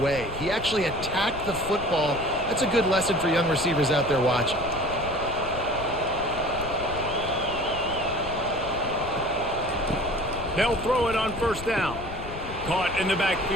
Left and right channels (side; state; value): left; noise; rumble, 11 dB below the sound